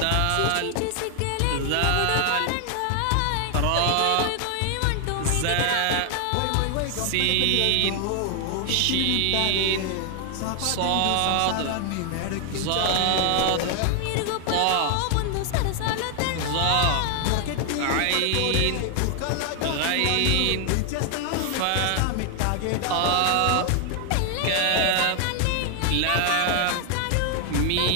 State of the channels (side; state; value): both; different; correlation 0.00